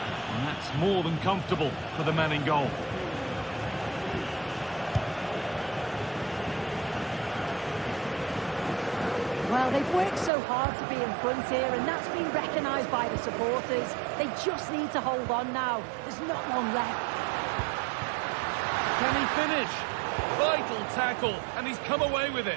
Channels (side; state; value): left; drops out; at 10.3 s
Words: And that's more than comfortable for the man in goal. Well, they've worked so hard to be in front here, and that's been recognised by the supporters. They just need to hold on now. There's not long left. Can he finish? Vital tackle, and he's come away with